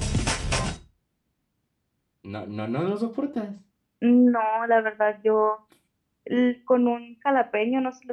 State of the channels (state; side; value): identical; both; correlation 1.00